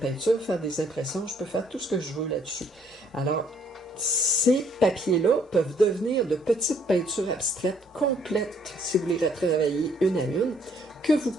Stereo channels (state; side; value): normal; both; correlation 0.65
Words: faire des impressions. Je peux faire tout ce que je veux là-dessus. Alors, ces papiers-là peuvent devenir de petites peintures abstraites complètes, si vous les retravaillez une à une, que vous